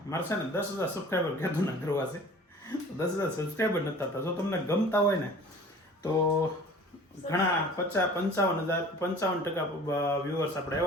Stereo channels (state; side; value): normal; both; correlation 0.45